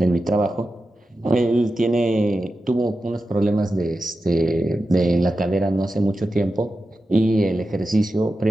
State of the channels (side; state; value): both; normal; correlation 0.92